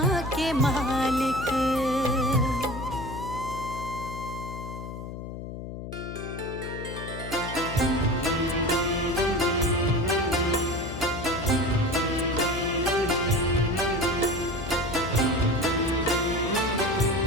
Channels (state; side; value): noise; left; hum, 9 dB below the sound